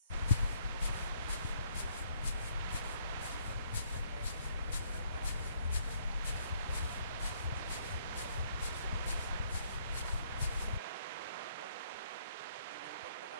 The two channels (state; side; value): inverted; both; correlation -0.67